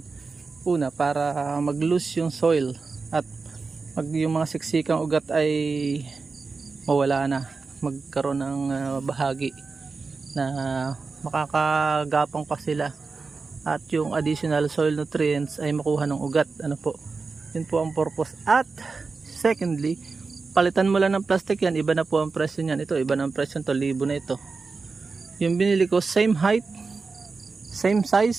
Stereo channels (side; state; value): left; quieter; 4.3 dB